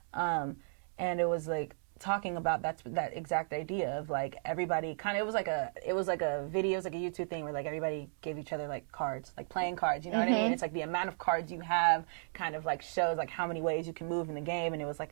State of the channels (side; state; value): left; silent; digital silence